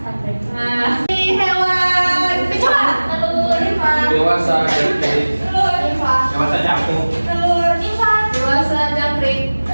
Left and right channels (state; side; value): inverted; both; correlation -1.00